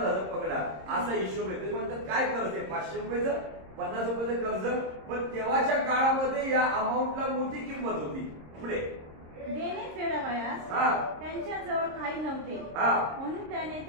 पकडा, असा हिशोब आहे. ते म्हणतात काय कर्ज आहे 500 रुपयाचं, 50 रुपयाचं कर्ज. पण तेव्हाच्या काळामध्ये या अमाऊंटला मोठी किंमत होती. पुढे देणे फेडावयास त्यांच्या जवळ काही नव्हते, म्हणून त्याने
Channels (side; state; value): left; late; 26 ms